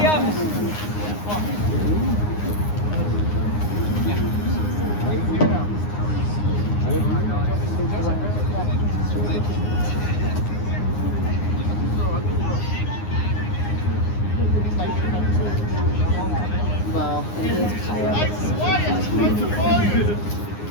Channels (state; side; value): late; right; 9.7 ms